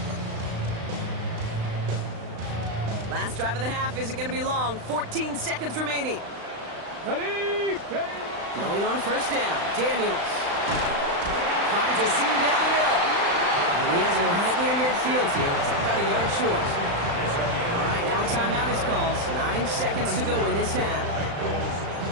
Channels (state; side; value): late; left; 35 ms